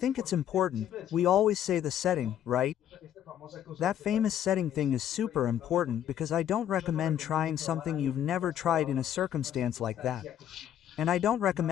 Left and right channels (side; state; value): right; quieter; 10.5 dB